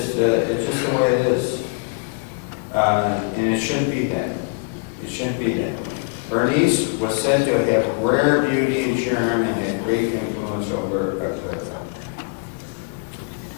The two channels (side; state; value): right; quieter; 36.1 dB